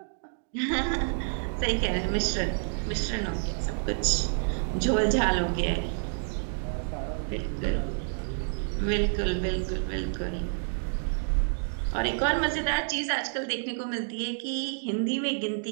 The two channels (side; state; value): left; silent; digital silence